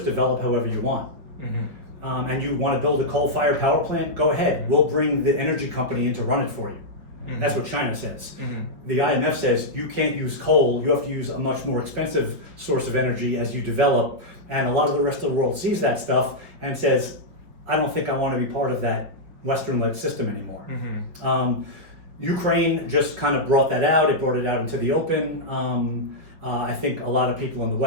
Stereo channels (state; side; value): late; left; 5.2 ms